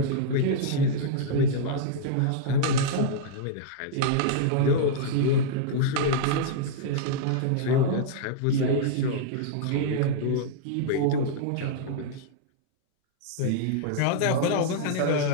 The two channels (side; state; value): both; different; correlation -0.02